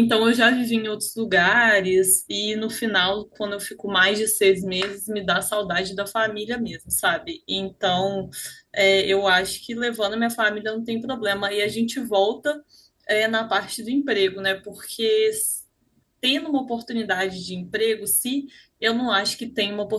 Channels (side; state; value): both; identical; correlation 1.00